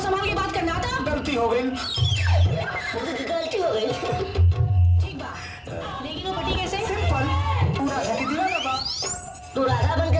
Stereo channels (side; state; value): both; identical; correlation 1.00